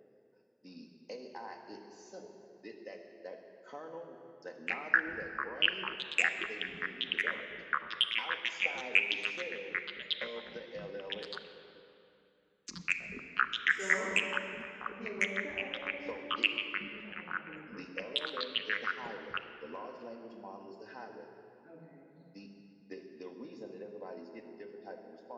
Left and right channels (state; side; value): identical; both; correlation 1.00